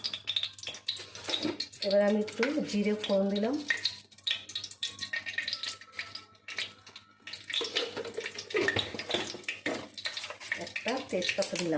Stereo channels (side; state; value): both; identical; correlation 1.00